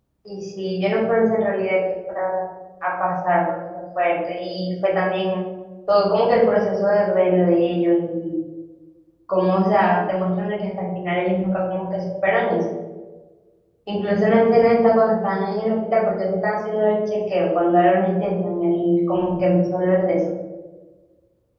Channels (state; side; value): identical; both; correlation 1.00